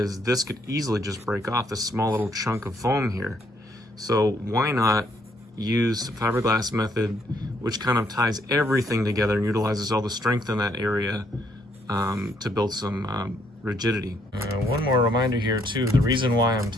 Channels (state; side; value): normal; both; correlation 0.70